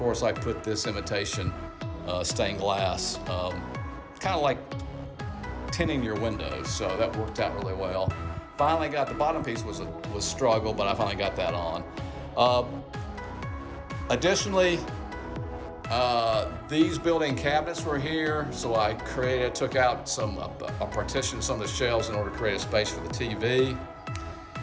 I put this imitation stained glass, kind of like tinting your windows, so that worked out really well. Finally got the bottom piece was struggle, but I finally got that on. Additionally, these built-in cabinets were here, so I took out I partitioned some of the shelves in order to create a space for the TV.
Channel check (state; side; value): identical; both; correlation 1.00